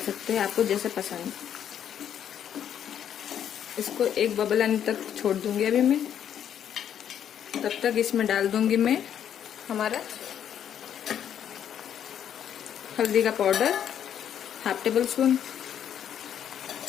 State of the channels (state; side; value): quieter; right; 9.4 dB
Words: हैं, आपको जैसे पसंद। इसको एक बबल आने तक छोड़ दूंगी अभी मैं। तब तक इसमें डाल दूंगी मैं हमारा हल्दी का पाउडर 1/2 टेबलस्पून,